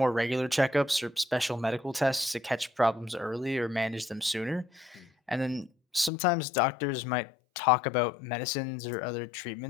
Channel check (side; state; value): right; drops out; at 6.1 s